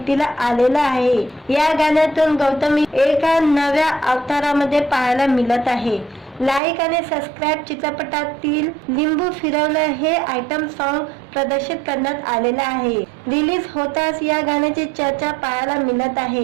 आलेलं आहे। या गाण्यातून गौतमी एका नव्या अवतारामध्ये पाहायला मिळत आहे। लाईक आणि सबस्क्राईब चित्रपटातील लिंबू फिरवलं हे आयटम सॉन्ग प्रदर्शित करण्यात आलेलं आहे। रिलीज होताच या गाण्याची चर्चा पाहायला मिळत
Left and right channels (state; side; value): drops out; left; at 6.6 s